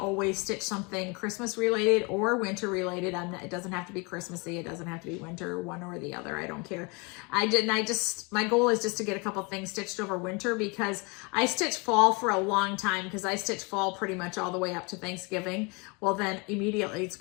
stitch something Christmas related or winter related. It doesn't have to be Christmassy. It doesn't have to be winter, one or the other. I don't care. My goal is just to get a couple things stitched over winter, because I stitch fall for a long time, because I stitch fall pretty much all the way up to Thanksgiving. Well, then immediately it's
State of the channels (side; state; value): right; quieter; 29.9 dB